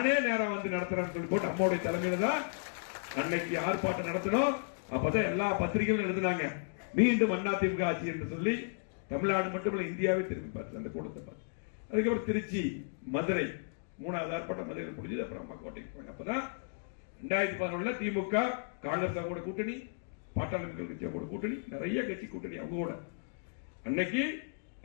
நேரம் நடத்துறேன்னு சொல்லி போட்டு அம்மாவுடைய தலைமையில தான் அன்னைக்கு ஆர்ப்பாட்டம் நடத்தணும். அப்பதான் எல்லா பத்திரிகைகளும் எழுதினாங்க, மீண்டும் அதிமுக ஆட்சி என்று சொல்லி. தமிழ்நாடு மட்டுமல்ல, இந்தியாவே திரும்பி பார்த்து அந்த கூட்டத்தை பார்த்து. அதுக்கப்புறம் திருச்சி, மதுரை 3வது ஆர்ப்பாட்டம் மதுரையில் முடிஞ்சது. அப்புறம் அம்மா கோட்டைக்கு போனாங்க. அப்பதான் 2011 திமுக காங்கிரஸ் கூட கூட்டணி, பாட்டாளி மக்கள் கட்சி கூட கூட்டணி, நிறைய கட்சி கூட்டணி அவங்க கூட. அன்னைக்கு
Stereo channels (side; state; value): right; silent; digital silence